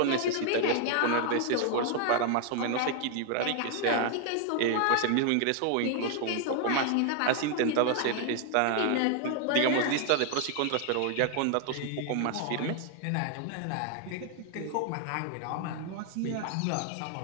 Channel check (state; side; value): different; both; correlation 0.00